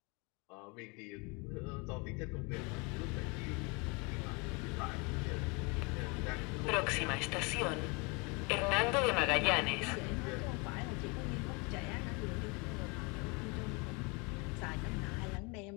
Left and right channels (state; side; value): quieter; right; 29.8 dB